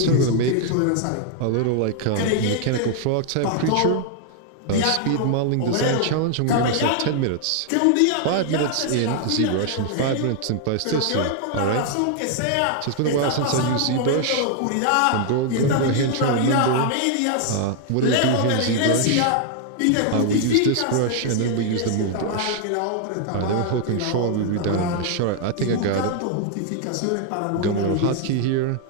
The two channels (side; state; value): both; different; correlation 0.00